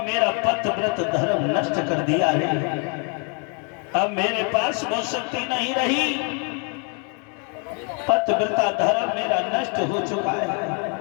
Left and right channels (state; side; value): quieter; right; 37.2 dB